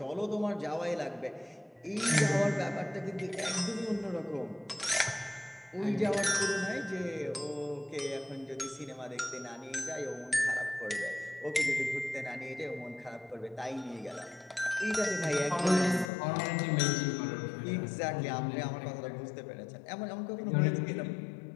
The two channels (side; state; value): right; drops out; at 16.1 s